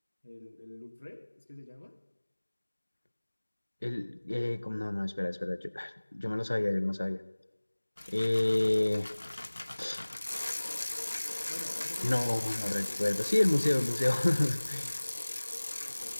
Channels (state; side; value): inverted; both; correlation -1.00